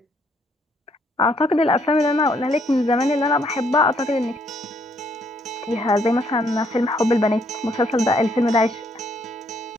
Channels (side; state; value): both; normal; correlation 0.70